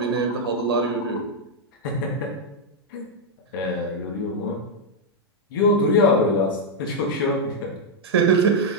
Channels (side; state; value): both; normal; correlation -0.03